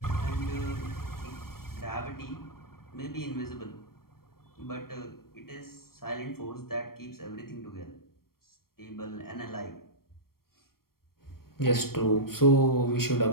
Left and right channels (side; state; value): right; late; 0.93 ms